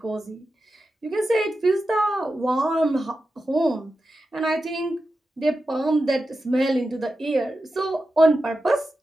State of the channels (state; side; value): normal; both; correlation 0.91